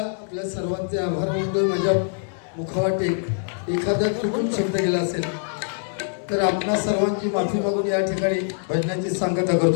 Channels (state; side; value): silent; right; digital silence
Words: सर्वांचे आभार मानतोय. माझ्या मुखावाटे एखादा चुकून शब्द गेला असेल तर आपणा सर्वांची माफी मागून या ठिकाणी भजनाची सांगता